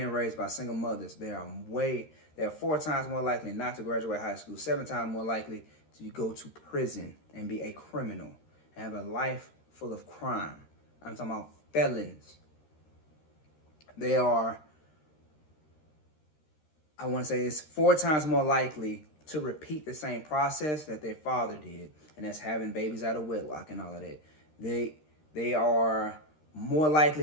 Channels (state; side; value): late; right; 13 ms